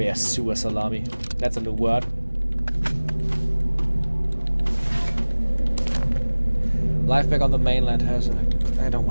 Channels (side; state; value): both; inverted; correlation -1.00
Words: sewer salami. That's a new word. Life back on the mainland has a... I don't